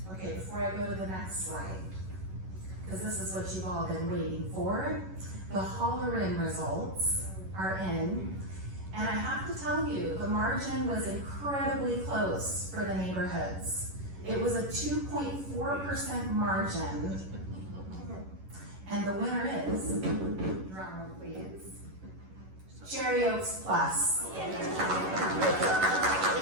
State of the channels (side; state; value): left; late; 11 ms